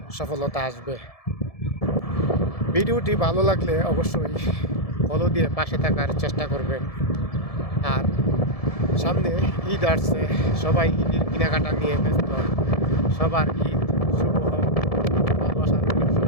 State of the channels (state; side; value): late; right; 1.7 ms